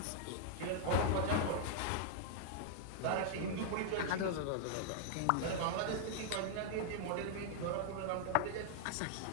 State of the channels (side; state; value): both; different; correlation -0.01